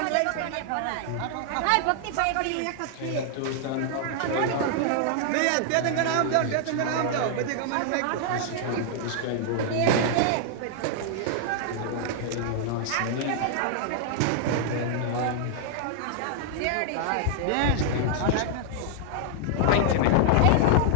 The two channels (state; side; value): different; both; correlation -0.01